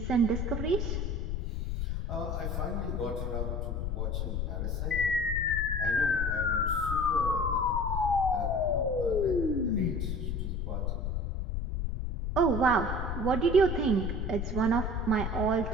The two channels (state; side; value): noise; left; rumble, 2 dB below the sound